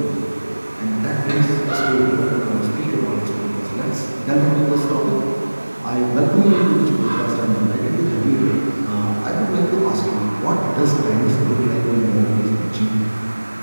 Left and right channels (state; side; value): inverted; both; correlation -1.00